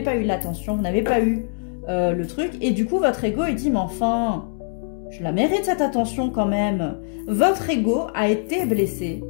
eu l'attention, vous n'avez pas eu le truc. Et du coup, votre ego, il dit, mais enfin, je la mérite cette attention quand même. Votre ego a été blessé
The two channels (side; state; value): right; silent; digital silence